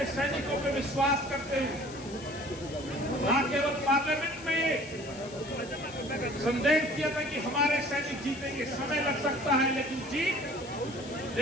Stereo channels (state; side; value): noise; left; hiss, 17 dB below the sound